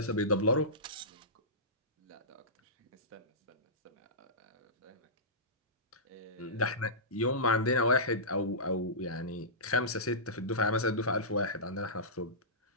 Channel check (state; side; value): normal; both; correlation -0.19